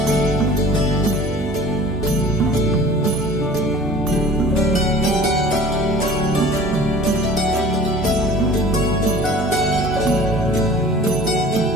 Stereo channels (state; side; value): normal; both; correlation 0.45